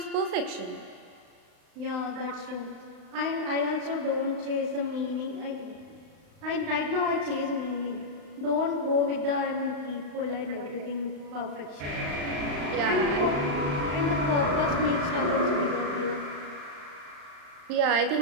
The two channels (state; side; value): late; left; 35 ms